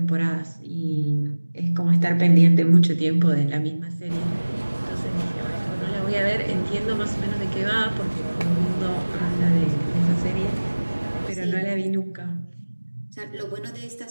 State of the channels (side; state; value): both; inverted; correlation -1.00